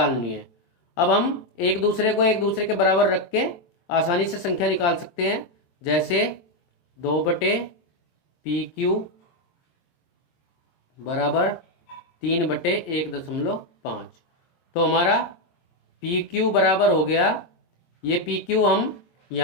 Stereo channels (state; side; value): late; right; 23 ms